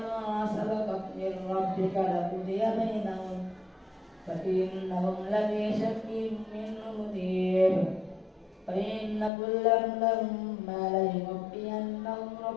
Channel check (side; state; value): right; drops out; at 9.3 s